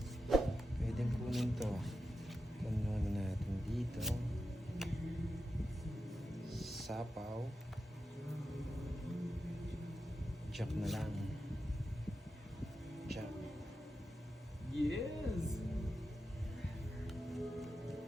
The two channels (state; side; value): normal; both; correlation 0.90